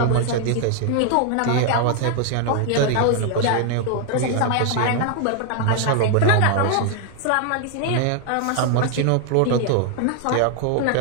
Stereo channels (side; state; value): both; different; correlation 0.00